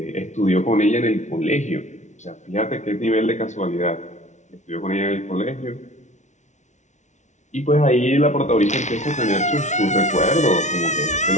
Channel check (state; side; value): late; right; 0.34 ms